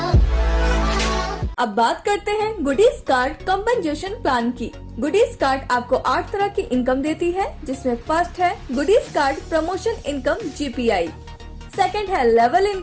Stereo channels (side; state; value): both; identical; correlation 1.00